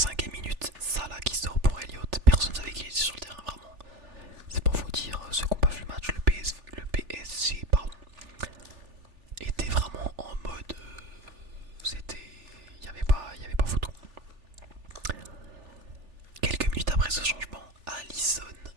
minute, Salah qui sort pour Elliott. Personne ne savait qu'il était sur le terrain vraiment. C'est pour vous dire, ceux qui n'ont pas vu le match, le PSG pardon, était vraiment en mode. C'était. Il n'y avait pas photo. Quelques minutes après ce changement, Alisson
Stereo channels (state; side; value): late; left; 3.4 ms